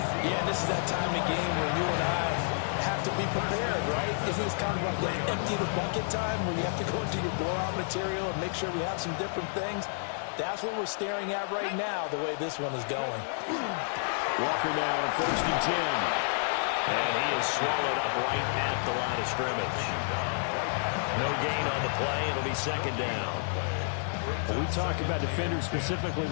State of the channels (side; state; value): right; silent; 58 dB below the other